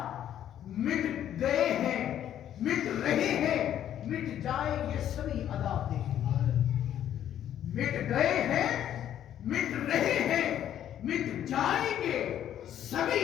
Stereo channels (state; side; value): quieter; right; 10.8 dB